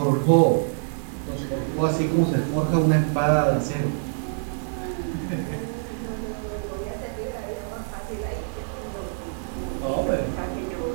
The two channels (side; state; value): left; silent; 56 dB below the other